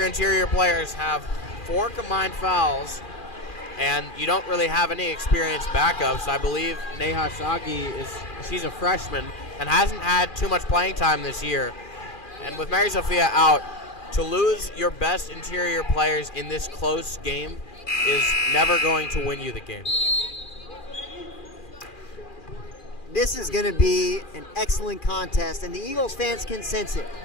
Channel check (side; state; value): right; late; 2.4 ms